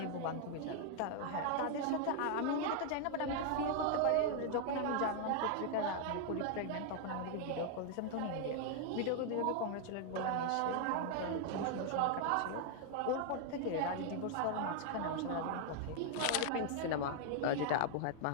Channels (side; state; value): both; different; correlation 0.00